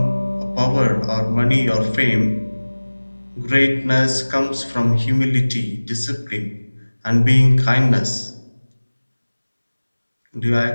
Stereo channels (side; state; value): both; inverted; correlation -1.00